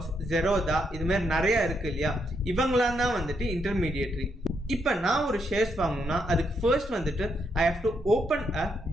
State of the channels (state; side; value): normal; both; correlation 0.77